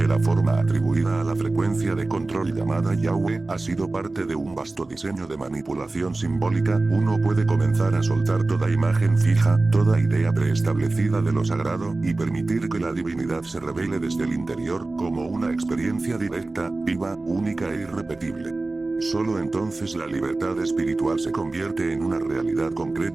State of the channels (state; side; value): quieter; left; 3.2 dB